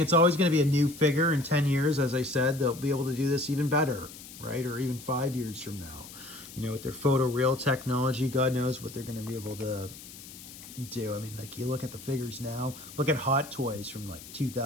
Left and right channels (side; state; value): left; noise; hiss, 16 dB below the sound